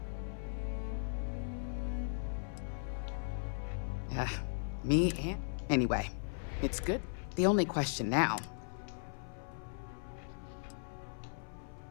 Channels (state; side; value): silent; right; 53 dB below the other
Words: Me and... Anyway, it's good. The only question now...